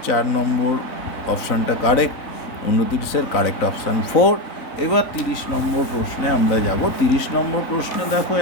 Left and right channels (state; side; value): late; right; 3.5 ms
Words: 4 নম্বর অপশানটা কারেক্ট, 29-এর কারেক্ট অপশান 4। এবার 30 নম্বর প্রশ্নে আমরা যাব। 30 নম্বর প্রশ্নে দেখো